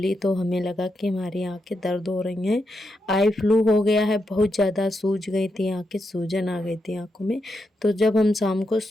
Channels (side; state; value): both; normal; correlation 0.84